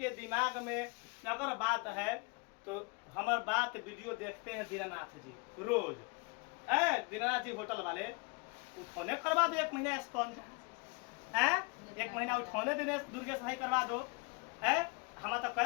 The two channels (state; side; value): quieter; right; 30.0 dB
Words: दिमाग में अगर बात है तो हमारे बात वीडियो देखते हैं दीनानाथ जी रोज। दीनानाथ जी होटल वाले उठौने करवा दो 1 महीना स्पॉन्ज। 1 महीना उठौने देने दुर्गेश भाई करवा दो। हम तो